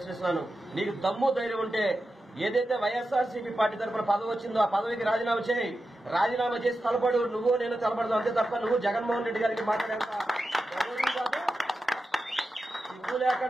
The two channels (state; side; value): normal; both; correlation 0.91